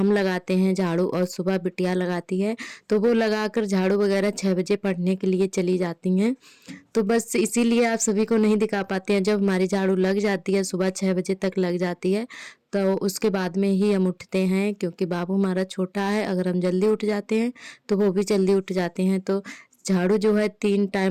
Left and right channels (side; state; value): both; identical; correlation 1.00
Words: लगाते हैं झाड़ू और सुबह बिटिया लगाती है, तो वो लगाकर झाड़ू वगैरह 6 बजे पढ़ने के लिए चली जाती हैं। तो बस इसीलिए आप सभी को नहीं दिखा पाते हैं। जब हमारी झाड़ू लग जाती है, सुबह 6 बजे तक लग जाती है, तो उसके बाद में ही हम उठते हैं, क्योंकि बाबू हमारा छोटा है। अगर हम जल्दी उठ जाते हैं तो वो भी जल्दी उठ जाते हैं। तो झाड़ू जो है 3